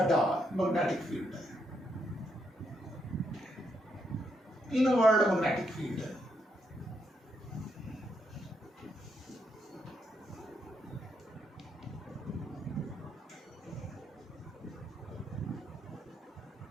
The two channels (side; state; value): both; normal; correlation 0.78